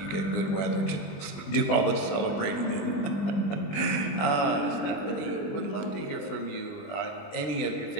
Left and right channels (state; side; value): late; right; 20 ms